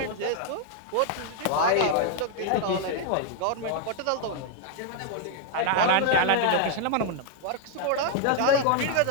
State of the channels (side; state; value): both; different; correlation 0.00